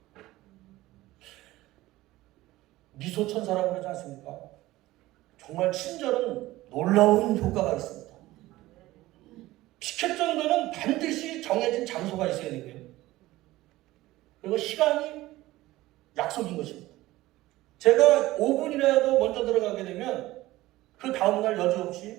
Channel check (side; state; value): left; quieter; 17.4 dB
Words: 미소천사라고 그러지 않습니까? 정말 친절은 놀라운 효과가 있습니다. 피켓 정도는 반드시 정해진 장소가 있어야 되고요. 그리고 시간이 약속인 것입니다. 제가 5분이라도 먼저 들어가게 되면 그 다음날